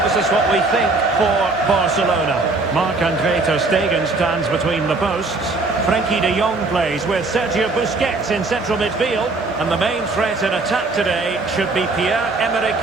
This is what we think for Barcelona. Marc-Andre ter Stegen stands between the posts. Frenkie de Jong plays with Sergio Busquets in central midfield. And the main threat in attack today should be Pierre-Emerick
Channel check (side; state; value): left; quieter; 3.4 dB